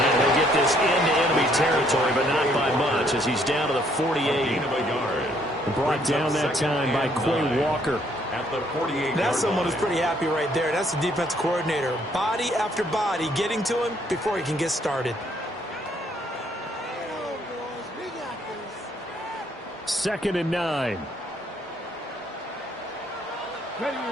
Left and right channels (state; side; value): normal; both; correlation 0.67